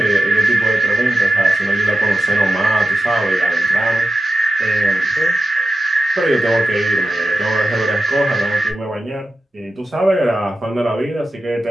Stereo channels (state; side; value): normal; both; correlation 0.92